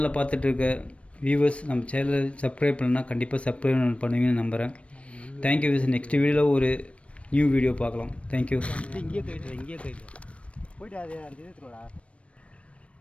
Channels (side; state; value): right; late; 0.062 ms